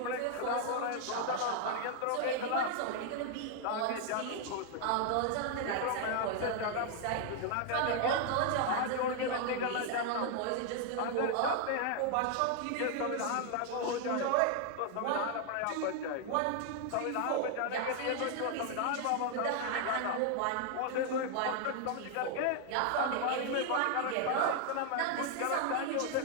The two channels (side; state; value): both; different; correlation 0.00